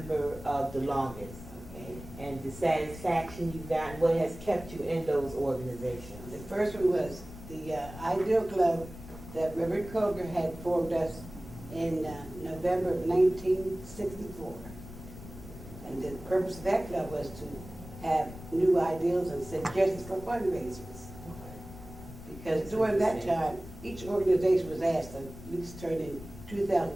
of the longest, Okay. and the satisfaction you've gotten, what has kept you in those organizations. The first one was the Ideal Club that Reverend Coker had formed us in November of 1964. And the purpose of that club was to have new ideals and suggestions for fundraisers. Because during that time, each organization was asked to at least turn in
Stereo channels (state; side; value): noise; left; rumble, 14 dB below the sound